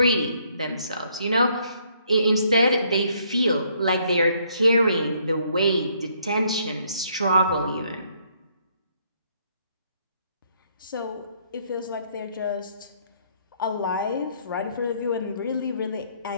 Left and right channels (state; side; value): inverted; both; correlation -0.68